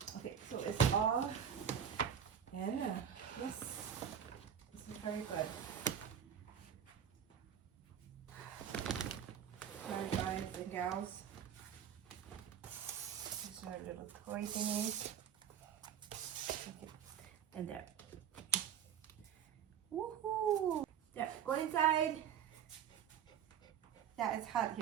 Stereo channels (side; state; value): left; quieter; 8.5 dB